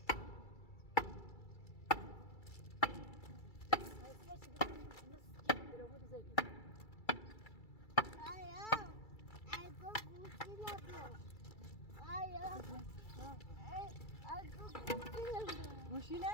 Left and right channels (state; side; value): late; right; 2.3 ms